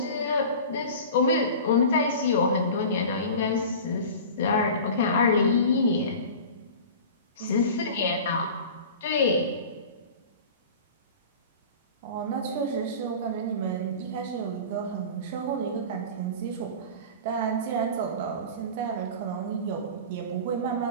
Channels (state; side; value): inverted; both; correlation -0.36